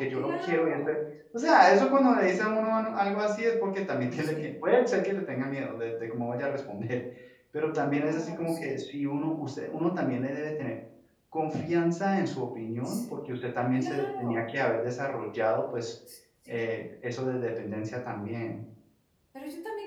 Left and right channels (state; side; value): identical; both; correlation 1.00